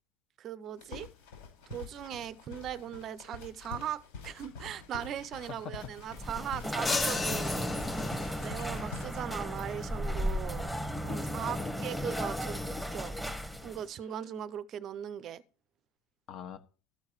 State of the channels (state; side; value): normal; both; correlation 0.74